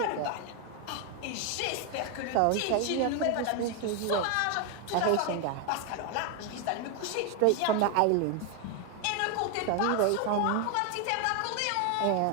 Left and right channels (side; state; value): both; different; correlation 0.01